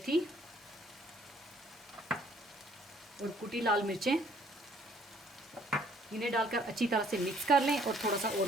और कुटी लाल मिर्चें, इन्हें डालकर अच्छी तरह से मिक्स कर लें और थोड़ा सा और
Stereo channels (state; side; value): normal; both; correlation 0.62